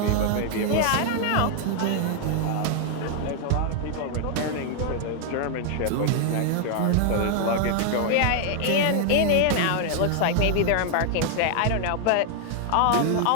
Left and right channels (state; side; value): different; both; correlation 0.00